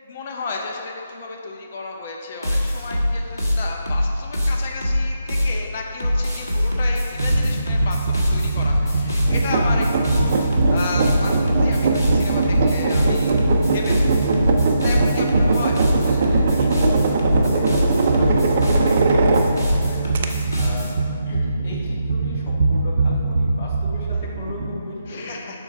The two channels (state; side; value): inverted; both; correlation -0.82